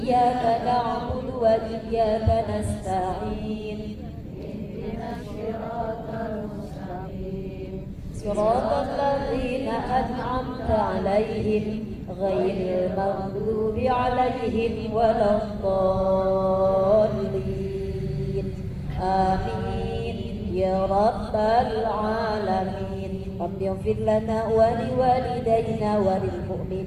na'budu wa iyyaka nasta'in. Ihdinas siratal mustaqim. Siratal ladzina an'amta 'alaihim ghairil maghdubi 'alaihim waladdallin. Amin ya rabbal alamin. Rabbi ighfir lana wa liwalidayna wa lil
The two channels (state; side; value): identical; both; correlation 1.00